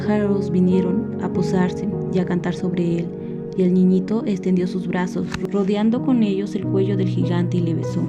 vinieron a posarse y a cantar sobre él, y el niñito extendió sus brazos, rodeando con ellos el cuello del gigante y le besó.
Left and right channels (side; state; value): both; identical; correlation 1.00